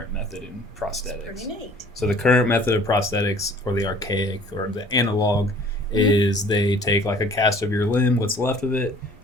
method in prosthetics. Pretty neat. So the current method of prosthetics, or the archaic or the analog, is they take like a cast of your limb, what's left of it,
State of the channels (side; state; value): both; normal; correlation 0.51